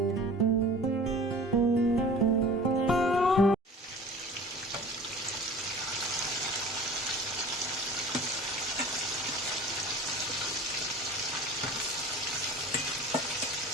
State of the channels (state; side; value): normal; both; correlation 0.42